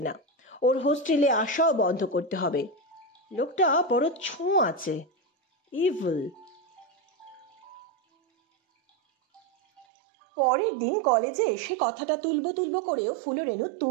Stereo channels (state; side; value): drops out; left; at 9.9 s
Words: না, ওর হোস্টেলে আসাও বন্ধ করতে হবে। লোকটা বড় ছোঁ আছে, ইভিল। পরের দিন কলেজে এসে কথাটা তুলবো করেও ফুলরেনু